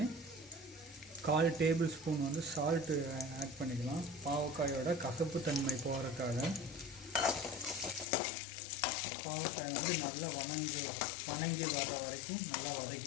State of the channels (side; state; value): right; drops out; at 8.1 s